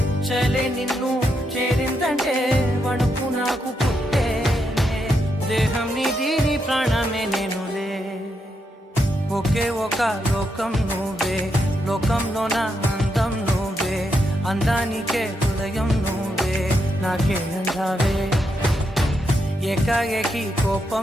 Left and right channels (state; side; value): normal; both; correlation 0.81